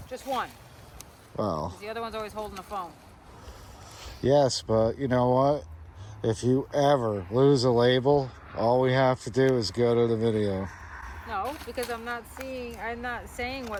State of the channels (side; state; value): both; identical; correlation 1.00